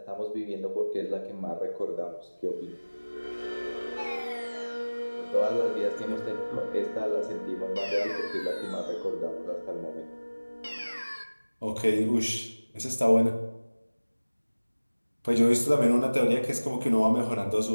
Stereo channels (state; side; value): inverted; both; correlation -1.00